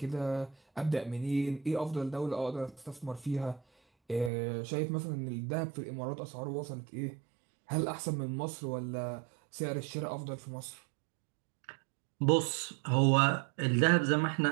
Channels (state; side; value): drops out; left; at 4.3 s